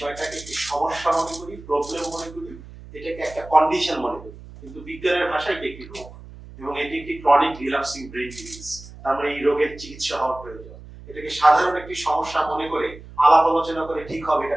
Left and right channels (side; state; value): right; noise; hum, 17 dB below the sound